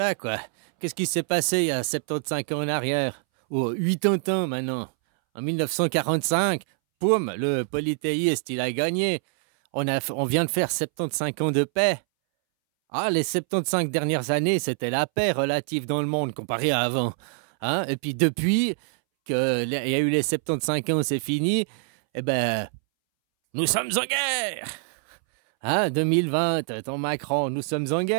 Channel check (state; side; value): silent; left; 62 dB below the other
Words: quoi. Qu'est-ce qui s'est passé il y a 75 ans en arrière? Ou 80 ans maintenant. En 1945, poum, le polythéiste, il a gagné. On vient de faire 75 ans de paix. Ah, les 75 dernières années, c'était la paix relative dans le monde comparé à avant. Hein? Et puis depuis qu'il y a eu les 75 ans, c'est fini, eh ben, nous sommes en guerre. Hein? 2020, ton Macron, nous sommes en